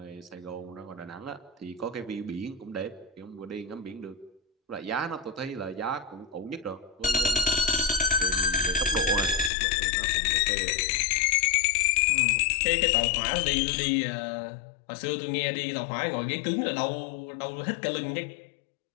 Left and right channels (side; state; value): right; drops out; at 9.5 s